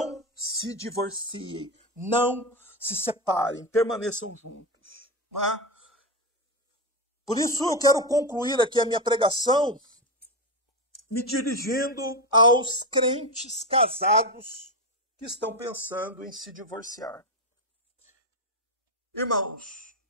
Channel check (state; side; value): normal; both; correlation 0.13